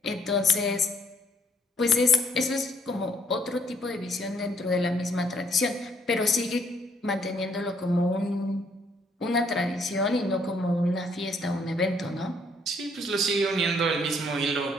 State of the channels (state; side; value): normal; both; correlation 0.67